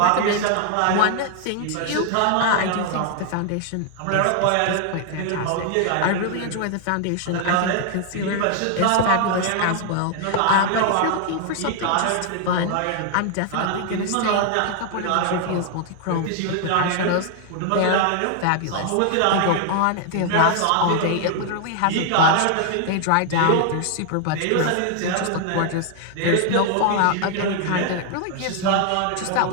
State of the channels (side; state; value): both; different; correlation 0.00